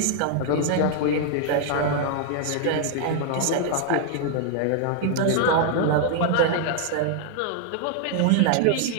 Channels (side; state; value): both; different; correlation 0.00